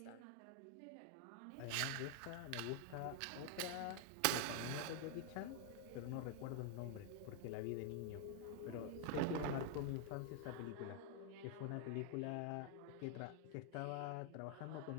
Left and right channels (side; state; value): both; different; correlation 0.00